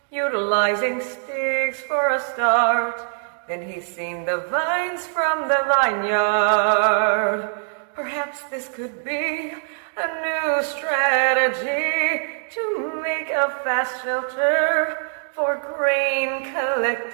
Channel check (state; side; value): silent; left; digital silence